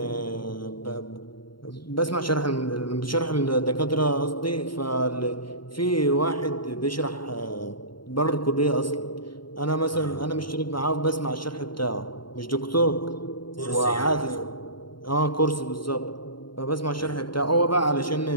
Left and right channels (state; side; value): late; right; 0.73 ms